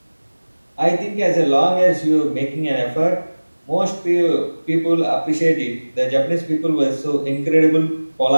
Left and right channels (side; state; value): both; inverted; correlation -1.00